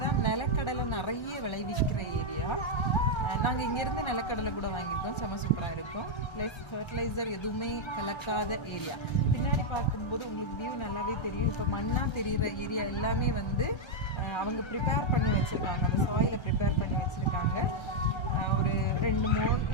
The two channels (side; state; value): right; late; 1.3 ms